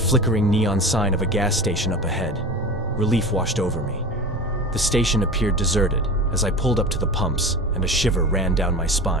neon sign of a gas station up ahead, relief washed over me. The station appeared deserted as I pulled up to the pumps, and a shiver ran down my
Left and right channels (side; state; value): both; normal; correlation 0.31